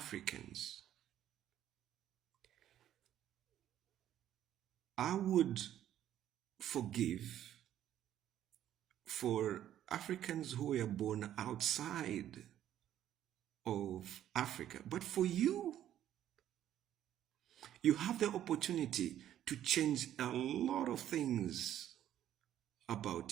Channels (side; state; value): left; quieter; 11.5 dB